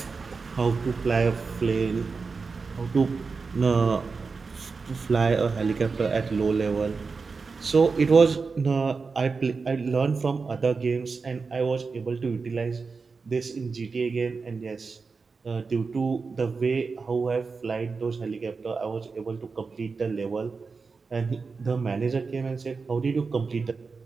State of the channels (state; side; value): quieter; left; 4.7 dB